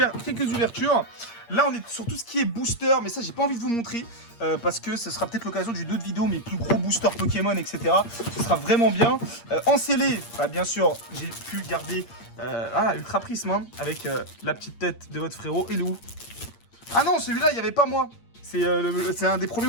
quelques ouvertures. Là, on est sur tout ce qui est booster, mais ça, j'ai pas envie de vous montrer parce que ce sera peut-être l'occasion d'une autre vidéo, mes plus gros boosters Pokémon, etc. Ce sera vraiment bien. En scellé, bien sûr, j'ai pu garder Ultra Prisme hein, avec la petite tête de votre frérot. Et où? Ah non, celui-là, il n'y avait pas moi. C'est un des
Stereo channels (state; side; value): late; right; 8.6 ms